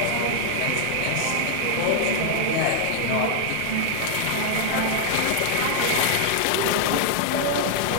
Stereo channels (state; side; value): different; both; correlation 0.00